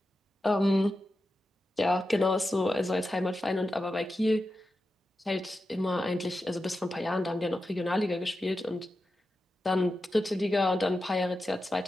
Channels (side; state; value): both; normal; correlation 0.91